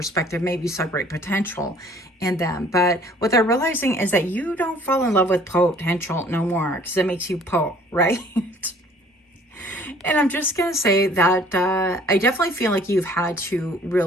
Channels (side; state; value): both; normal; correlation 0.55